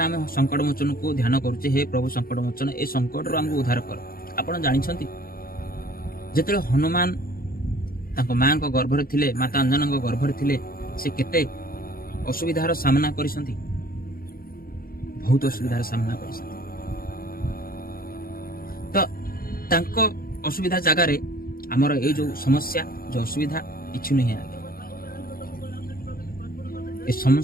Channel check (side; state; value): right; late; 0.42 ms